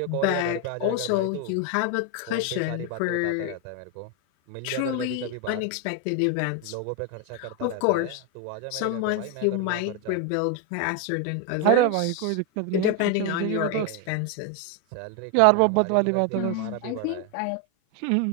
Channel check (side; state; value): both; different; correlation 0.01